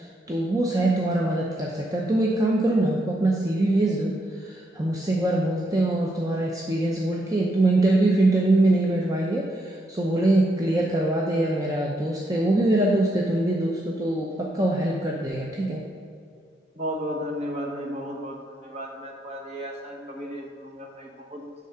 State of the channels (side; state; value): both; normal; correlation 0.78